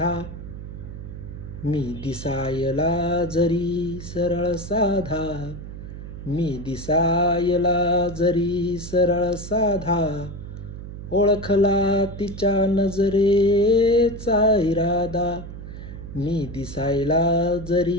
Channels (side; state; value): right; noise; hum, 11 dB below the sound